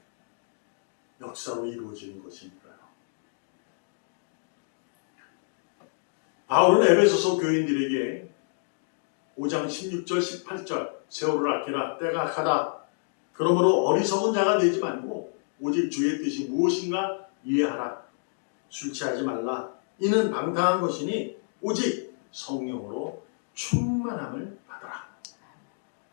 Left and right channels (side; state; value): right; silent; digital silence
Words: 역사로 이루어지는 것이니까요. 바울은 에베소서 교인들에게 5장 16절 18절 세월을 아끼라 때가 악하다. 그러므로 어리석은 자가 되지 말고 오직 주의 뜻이 무엇인가 이해하라. 술 취하지 말라. 이는 방탕한 것이니 오직 성령으로 충만함을 받아라.